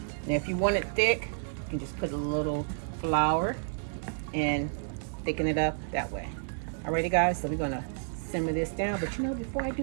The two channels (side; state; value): left; silent; digital silence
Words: Now, if you want it thick, you can just put a little flour and thicken it up that way. Alrighty, guys. So we're gonna simmer this down, but you know, before I